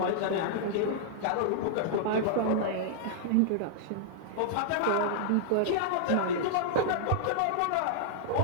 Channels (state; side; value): different; both; correlation -0.01